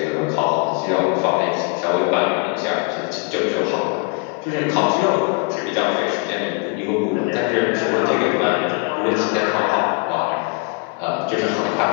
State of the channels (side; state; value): right; quieter; 32.9 dB